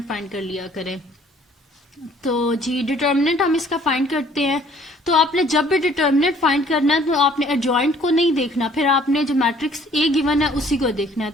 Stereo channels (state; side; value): normal; both; correlation 0.58